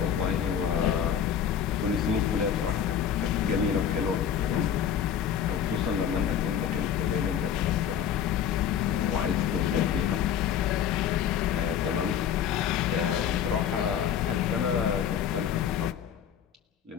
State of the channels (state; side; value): quieter; right; 8.8 dB